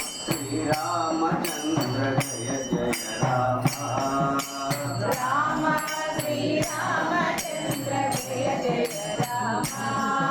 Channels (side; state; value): both; identical; correlation 1.00